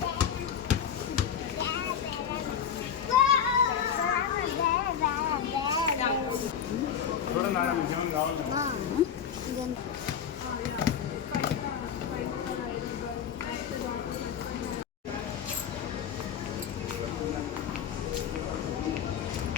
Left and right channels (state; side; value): quieter; right; 8.1 dB